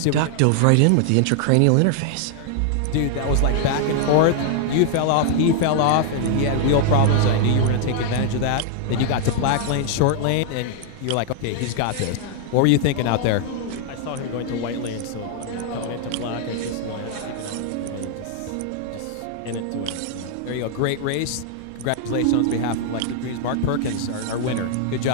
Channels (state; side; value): different; both; correlation 0.00